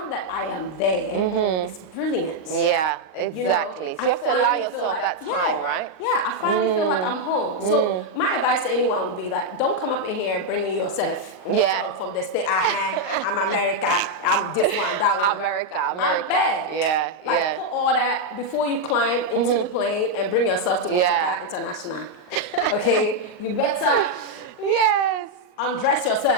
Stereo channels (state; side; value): late; right; 39 ms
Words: that I am there, it's brilliant. Yeah, exactly. So you have to allow yourself that time, right? Yeah, I finally feel like I'm home. So my advice to anyone would be like, don't come up in here bringing yourself from the state. I'm America. I'm this one, that one. America. Like, put all that before you climb into the plane and bring yourself to Africa International. Okay, you better. Yes. Undress